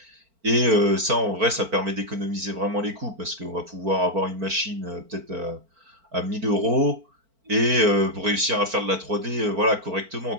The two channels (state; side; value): late; left; 4.4 ms